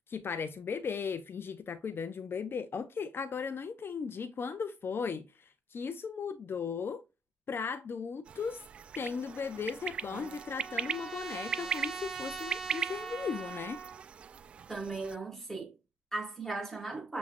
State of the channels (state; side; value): normal; both; correlation 0.67